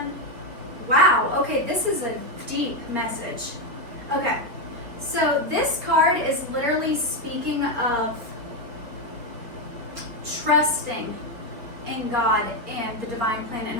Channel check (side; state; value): left; late; 4.2 ms